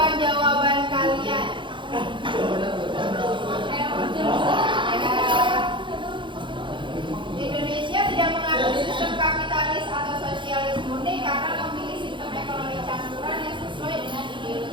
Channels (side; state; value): left; late; 0.23 ms